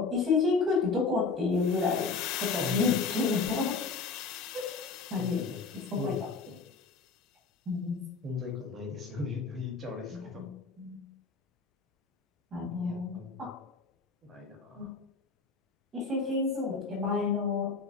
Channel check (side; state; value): right; quieter; 4.5 dB